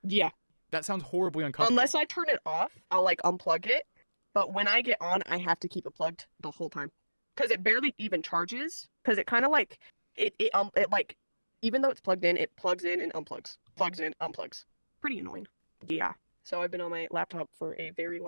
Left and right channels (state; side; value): inverted; both; correlation -1.00